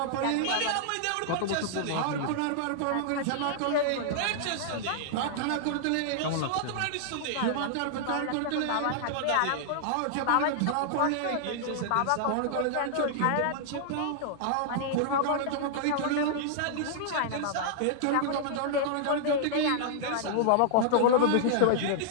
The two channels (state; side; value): different; both; correlation -0.01